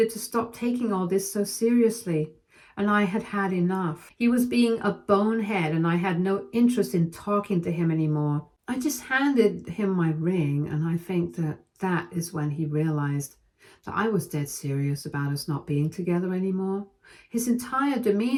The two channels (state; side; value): identical; both; correlation 1.00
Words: to stop taking all this so seriously, and I had had enough. He was being a bonehead, and I had no interest in talking to him anymore. I just handed him my ring, and I think that is when he realized that I was dead serious about us not being together anymore. His entire